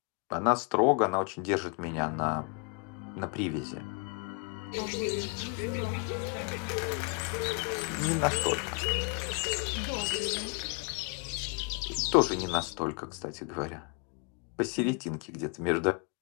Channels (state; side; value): quieter; right; 36.6 dB